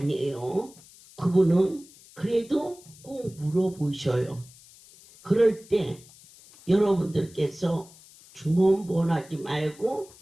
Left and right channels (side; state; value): left; noise; hiss, 23 dB below the sound